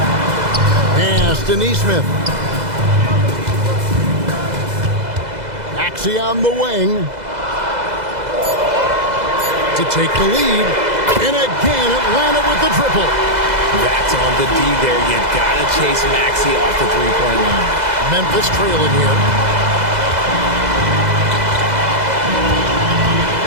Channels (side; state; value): left; late; 2.0 ms